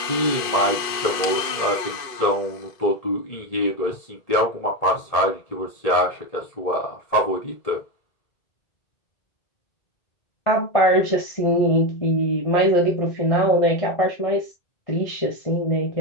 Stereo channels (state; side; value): late; right; 2.5 ms